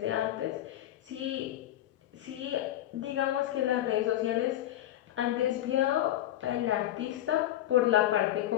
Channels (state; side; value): quieter; right; 13.1 dB